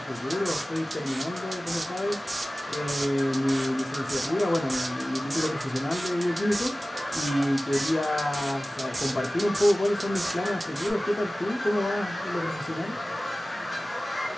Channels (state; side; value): normal; both; correlation 0.97